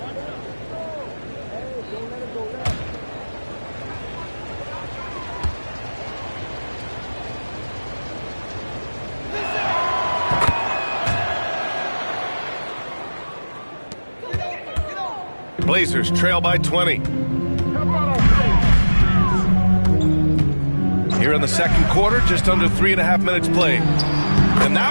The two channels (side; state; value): both; inverted; correlation -1.00